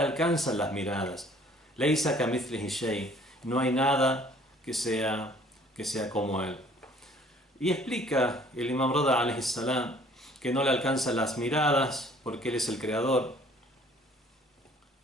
las miradas, Laysa kamithlihi shay, no hay nada que sea como él. Y explica el Imam Rida alayhi salam que no le alcanzan las miradas porque él es el creador.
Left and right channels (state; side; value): normal; both; correlation 0.56